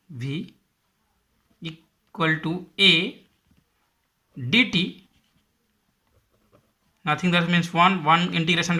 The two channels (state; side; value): identical; both; correlation 1.00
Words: v equal to a dt, nothing, that means 1 integration